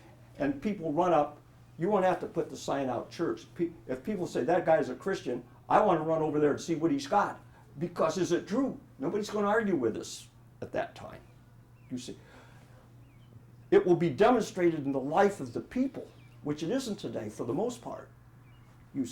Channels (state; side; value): identical; both; correlation 1.00